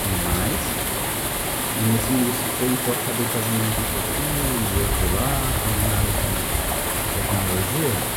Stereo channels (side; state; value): both; identical; correlation 1.00